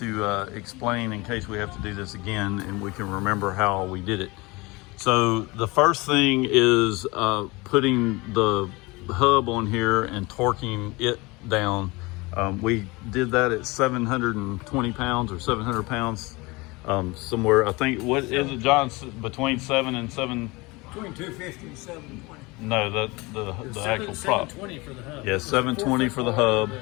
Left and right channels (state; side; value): quieter; right; 24.2 dB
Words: explain in case we have to do this again and we can remember how we did it. So the first thing is putting the hub on here and torquing it down. We did that at 720 pounds or 700 pounds somewhere. I think, what is it, John, between 7 and 7? Between 250 and 720. No, the actual prop. 720 for the hub. Yeah, 720 for the hub,